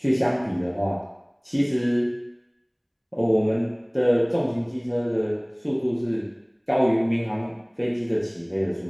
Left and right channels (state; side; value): identical; both; correlation 1.00